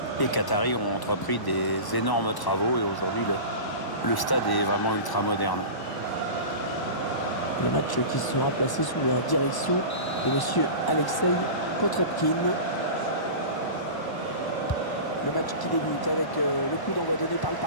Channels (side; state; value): right; late; 1.0 ms